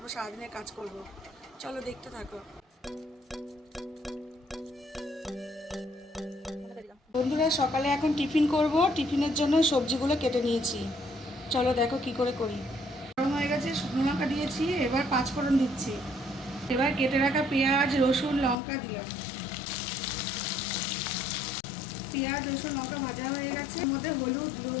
সারাদিনের কাজ করব। চলো দেখতে থাকো। বন্ধুরা, সকালে এখন টিফিন করব। টিফিনের জন্য সবজিগুলো কেটে নিয়েছি। চলো দেখো কি করে করি। গরম হয়ে গেছে, শুকনো লঙ্কা দিয়েছি, এবার পাঁচফোড়ন দিচ্ছি। এবার কেটে রাখা পেঁয়াজ, রসুন, লঙ্কা দিলাম। পেঁয়াজ, রসুন, লঙ্কা ভাজা হয়ে গেছে, এর মধ্যে হলুদ,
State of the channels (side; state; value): right; drops out; at 18.6 s